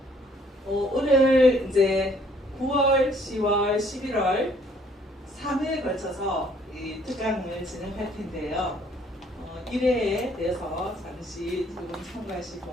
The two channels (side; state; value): both; normal; correlation 0.62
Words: 오늘 이제 9월, 10월, 11월 3회에 걸쳐서 이 특강을 진행할 텐데요. 1회에 대해서 잠시 두 분